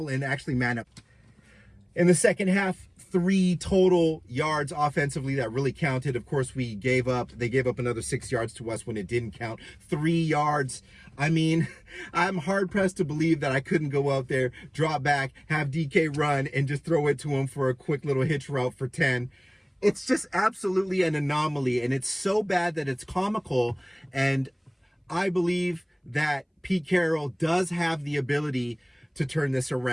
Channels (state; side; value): identical; both; correlation 1.00